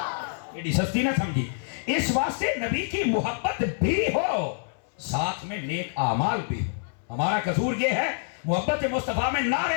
ایڈی سستی نہ سمجھی۔ اس واسطے نبی کی محبت بھی ہو، ساتھ میں نیک اعمال بھی ہو۔ ہمارا قصور یہ ہے محبت مصطفیٰ میں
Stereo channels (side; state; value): right; silent; 60 dB below the other